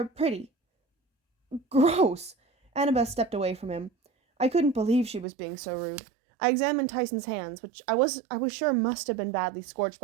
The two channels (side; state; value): left; drops out; at 5.2 s